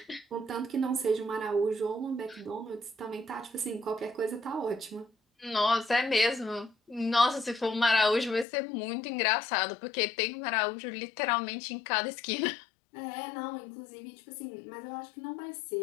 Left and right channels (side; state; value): right; drops out; at 8.5 s